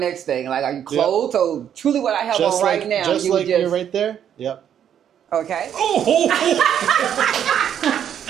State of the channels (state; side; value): quieter; left; 9.3 dB